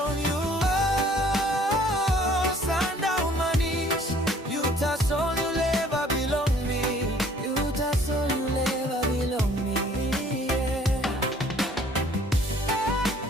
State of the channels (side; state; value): both; normal; correlation 0.57